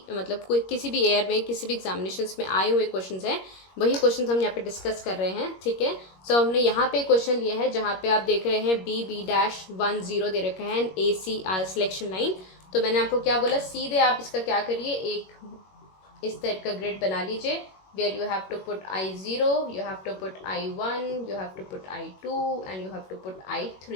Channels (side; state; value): right; late; 21 ms